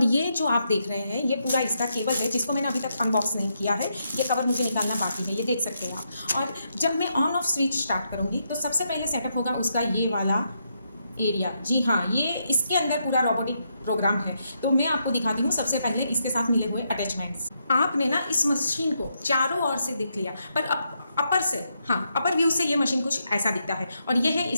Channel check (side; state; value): both; inverted; correlation -0.80